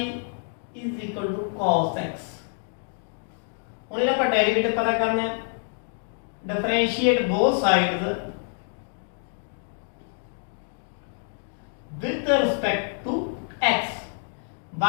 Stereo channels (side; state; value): right; silent; 60 dB below the other